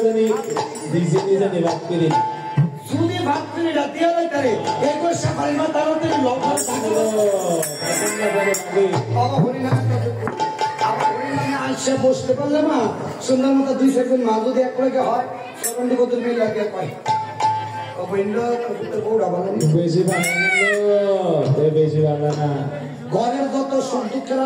যদি ভাতৃরা দিয়ে করে এই করছে ফারিমা তাড়াতাড়ি লবণ আসে বসতে পারলে মা সুন্দর মতো 2-4 মা যদি এক করে হয় সরন্ডি কত মিল লাগে পাই ঘরের যত সুখ দুঃখের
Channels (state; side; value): identical; both; correlation 1.00